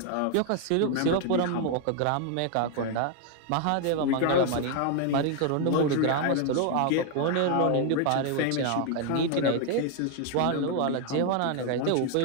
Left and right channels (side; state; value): both; different; correlation 0.00